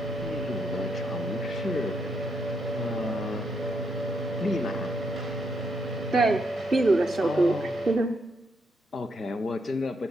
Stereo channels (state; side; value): normal; both; correlation 0.77